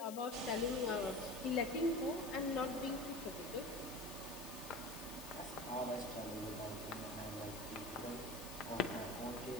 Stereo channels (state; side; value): noise; left; hiss, 11 dB below the sound